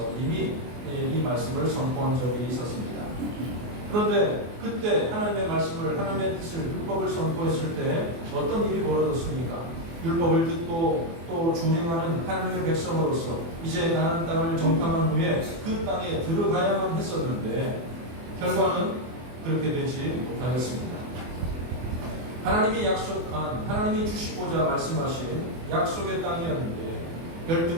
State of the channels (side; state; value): left; late; 24 ms